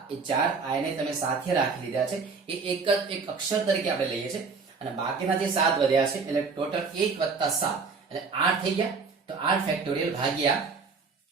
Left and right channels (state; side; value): quieter; left; 4.8 dB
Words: એ 4i ને તમે સાથે રાખી લીધા છે, એ એક અક્ષર તરીકે આપણે લઈએ છીએ, અને બાકીના જે 7 વધ્યા છે એટલે ટોટલ 1 + 7 એટલે 8 થઈ ગયા. તો 8 ફેક્ટોરિયલ ભાગ્યા,